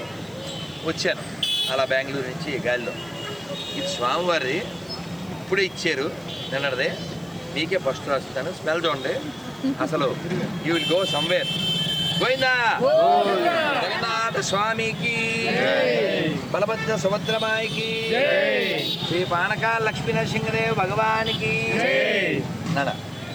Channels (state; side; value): noise; right; hiss, 29 dB below the sound